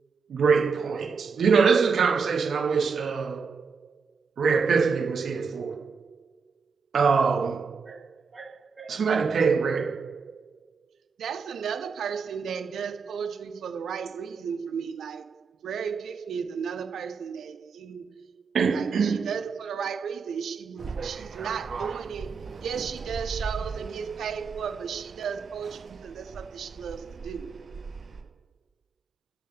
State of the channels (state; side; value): quieter; left; 5.4 dB